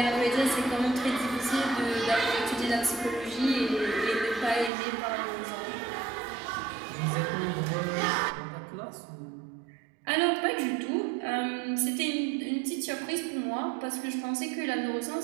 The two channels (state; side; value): drops out; left; at 4.7 s